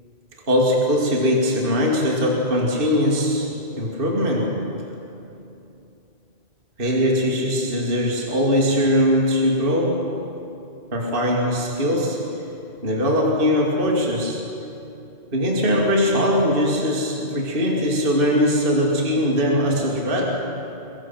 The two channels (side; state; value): left; late; 2.6 ms